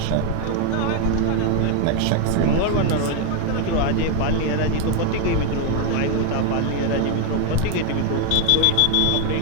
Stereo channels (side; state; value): both; different; correlation 0.01